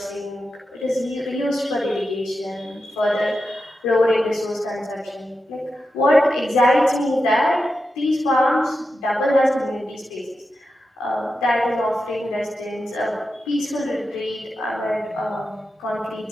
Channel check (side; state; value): both; normal; correlation 0.89